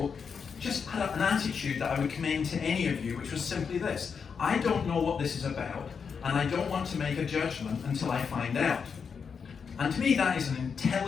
just had an attitude that I would commend to any of you, which was simply this. I don't know what this is about. And I don't want to make a judgment until I find out. And to me, that is an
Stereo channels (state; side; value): quieter; right; 6.2 dB